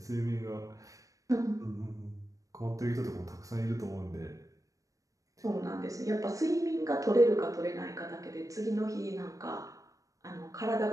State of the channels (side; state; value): left; late; 0.16 ms